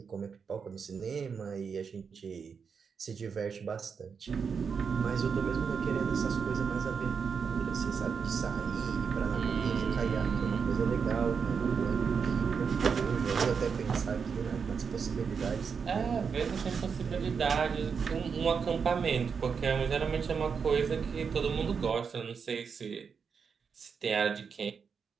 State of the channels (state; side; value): quieter; left; 6.1 dB